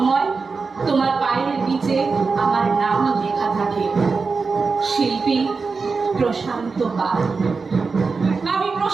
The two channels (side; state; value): left; quieter; 4.6 dB